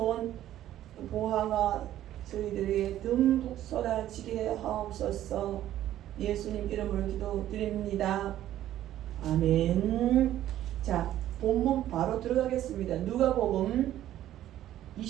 보화가 저희들에게 듬뿍 쏟아지게 하옵소서. 예수님 이름으로 기도드립니다. 아멘. 자, 본문 바로 들어가겠습니다. 누가복음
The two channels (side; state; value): left; quieter; 12.7 dB